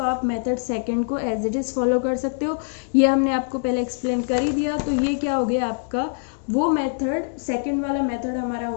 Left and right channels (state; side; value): silent; right; digital silence